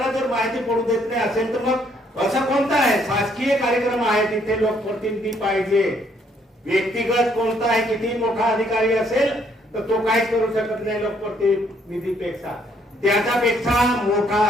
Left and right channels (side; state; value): both; normal; correlation 0.67